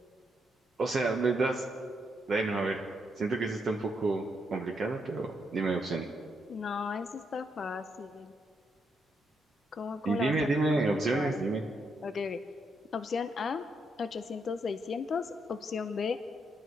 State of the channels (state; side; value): normal; both; correlation 0.79